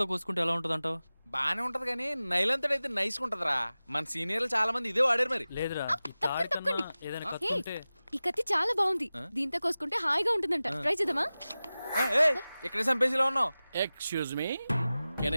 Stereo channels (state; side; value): inverted; both; correlation -0.96